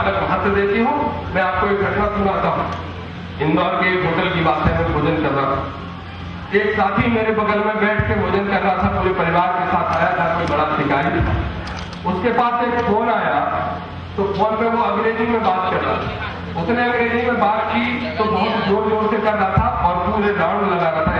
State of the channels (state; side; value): identical; both; correlation 1.00